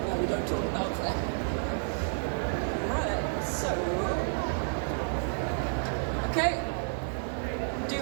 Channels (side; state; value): left; silent; digital silence